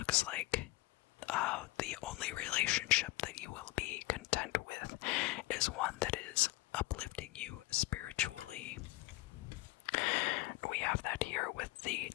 like the only relationship that you will be content with is one that is uplifting you spiritually. We have that here with the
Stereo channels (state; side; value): quieter; right; 19.7 dB